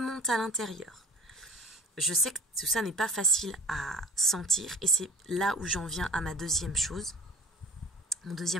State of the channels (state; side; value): normal; both; correlation 0.40